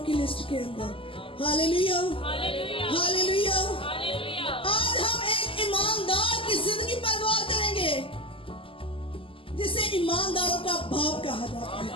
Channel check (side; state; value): right; late; 0.26 ms